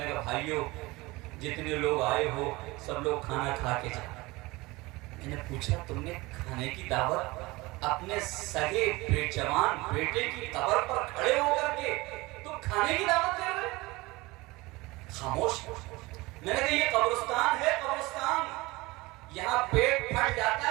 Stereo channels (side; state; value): left; quieter; 22.0 dB